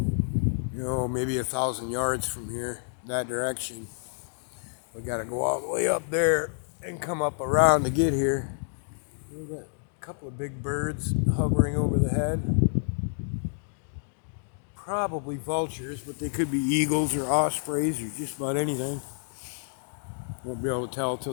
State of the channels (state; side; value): silent; right; digital silence